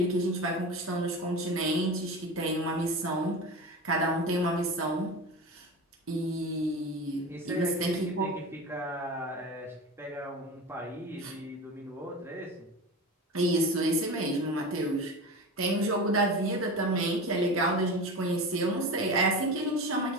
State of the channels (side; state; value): both; normal; correlation 0.29